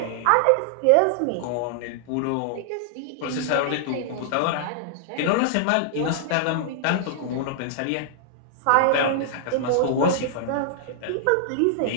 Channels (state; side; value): different; both; correlation -0.01